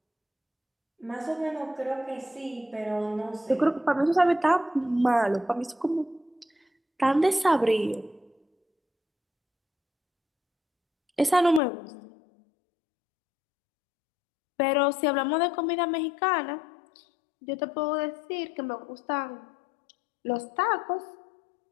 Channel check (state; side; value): drops out; right; at 11.6 s